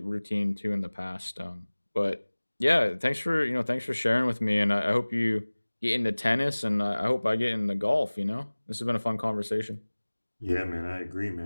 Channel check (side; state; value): both; inverted; correlation -1.00